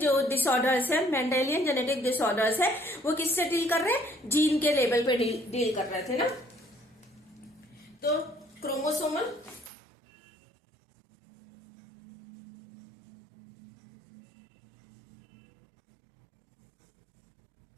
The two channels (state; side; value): drops out; left; at 9.7 s